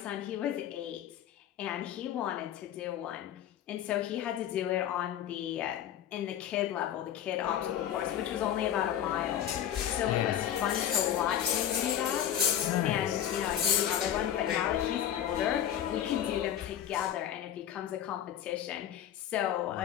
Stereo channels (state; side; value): quieter; right; 10.4 dB